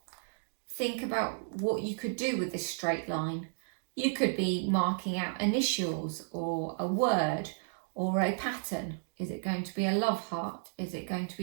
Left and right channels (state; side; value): silent; left; digital silence